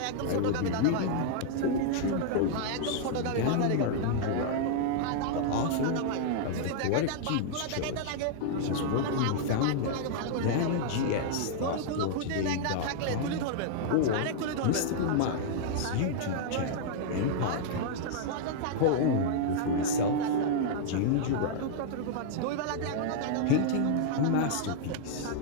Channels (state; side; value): different; both; correlation -0.01